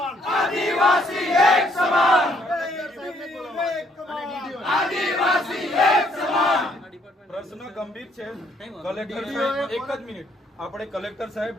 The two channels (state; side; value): normal; both; correlation 0.68